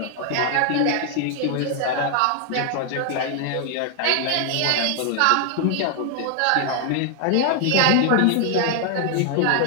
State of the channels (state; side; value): different; both; correlation 0.00